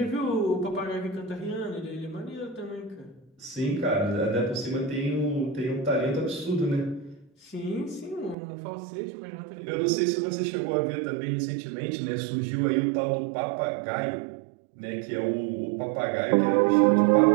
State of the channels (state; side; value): drops out; left; at 8.3 s